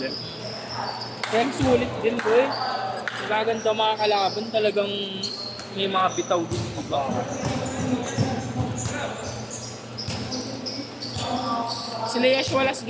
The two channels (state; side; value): identical; both; correlation 1.00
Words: Kaya sulit din ko eh. Magaganda mga kalaban, talagang may mga bitaw din iba. Sila Yash Wallace